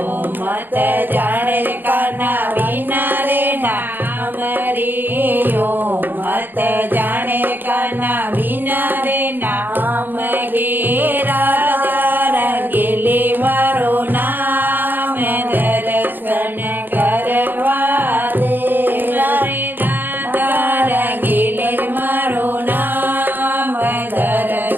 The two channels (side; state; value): left; late; 0.092 ms